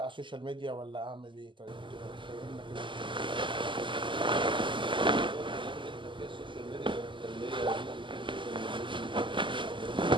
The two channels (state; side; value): late; left; 0.24 ms